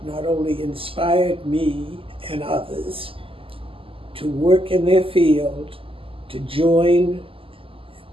not only inspired me and others to work in their field, to join,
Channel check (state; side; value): late; left; 0.26 ms